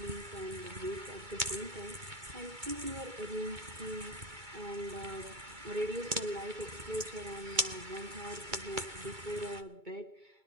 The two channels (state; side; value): late; left; 2.2 ms